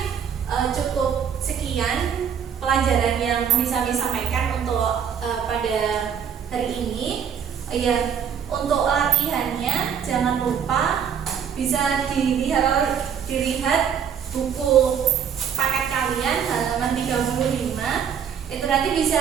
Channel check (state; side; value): quieter; left; 7.9 dB